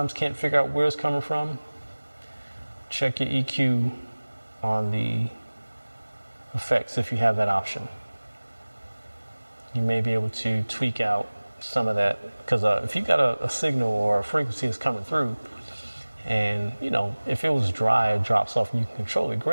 can't figure out where it's coming from, check your EQ on the effects if you have that option. You may be able to tweak out some of that, because if you got a signal or a frequency that's coming through, and you know, if it was dry, it drops off and you can control it,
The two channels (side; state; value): both; inverted; correlation -1.00